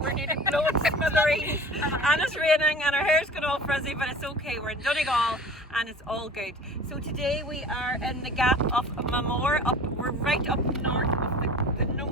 we're nearly blowing smithereens and it's raining and our hair's going all frizzy, but it's okay, we're in Donegal and it's all good. So today we are in the gap of Mamore, we're right up north of the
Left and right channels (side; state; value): both; normal; correlation 0.42